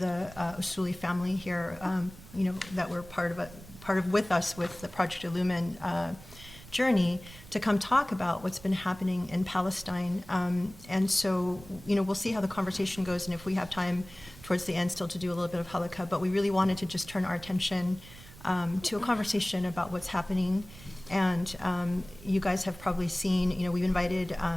Usuli family here, that were part of with us with the Project Illumin journey, to come talk about what's been happening in Palestine. And so, we'll see how the conversation goes, and if we have time towards the end still to do a little bit of halakha, but we really wanted to just turn our attention to a conversation about what's happening. And you guys have probably seen, we've invited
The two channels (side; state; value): right; noise; rumble, 19 dB below the sound